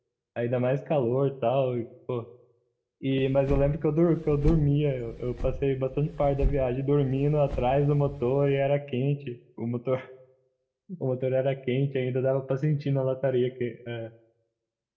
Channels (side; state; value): both; identical; correlation 1.00